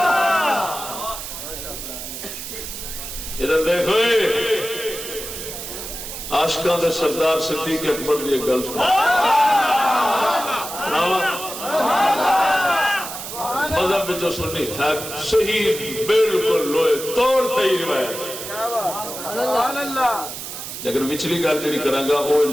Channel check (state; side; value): noise; right; hiss, 8 dB below the sound